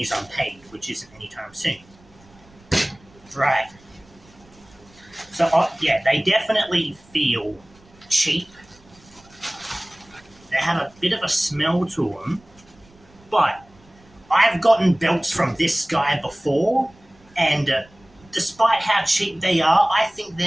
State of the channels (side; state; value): right; noise; rumble, 28 dB below the sound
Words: unpaid, which isn't anytime soon. Right. So, yeah, they definitely feel cheap. They have a bit of a smell to them. But I've gotten belts from this guy before, and despite how cheap they are, I think